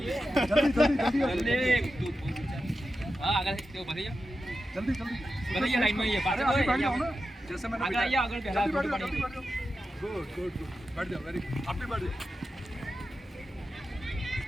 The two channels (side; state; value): both; normal; correlation 0.91